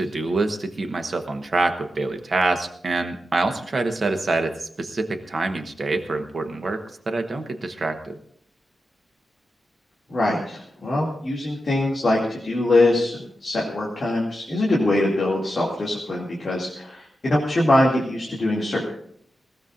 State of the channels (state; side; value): normal; both; correlation 0.89